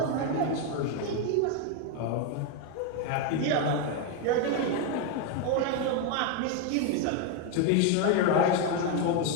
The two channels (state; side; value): different; both; correlation 0.01